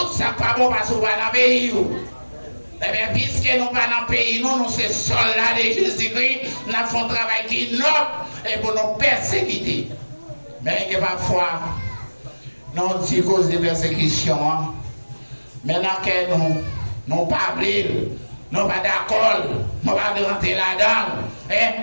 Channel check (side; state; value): both; inverted; correlation -1.00